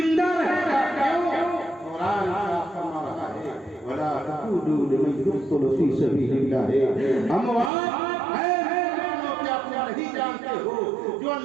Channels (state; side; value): drops out; left; at 7.7 s